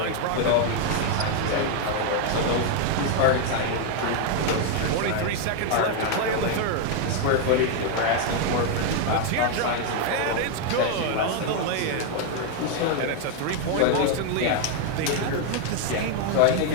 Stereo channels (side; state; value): both; different; correlation 0.01